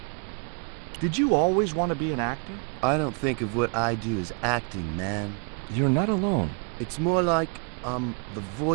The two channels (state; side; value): quieter; left; 39.4 dB